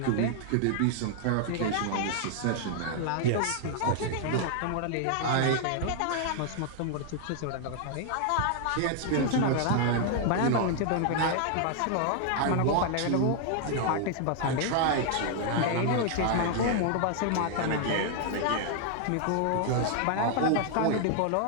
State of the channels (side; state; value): both; different; correlation 0.00